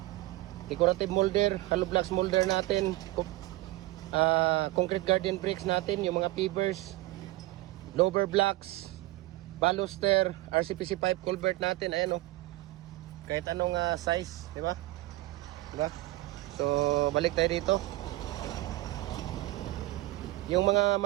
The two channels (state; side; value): quieter; left; 18.6 dB